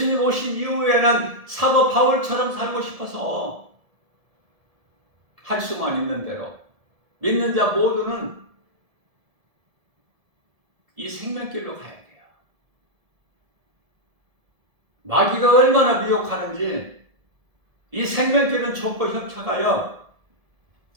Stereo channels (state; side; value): late; left; 1.7 ms